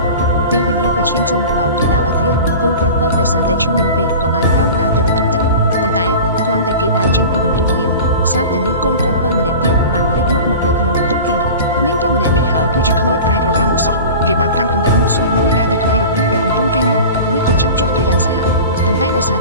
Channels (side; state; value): both; inverted; correlation -0.36